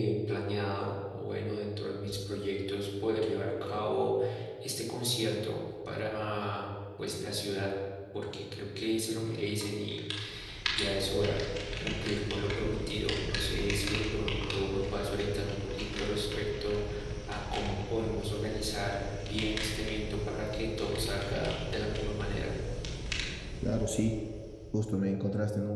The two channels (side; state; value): both; identical; correlation 1.00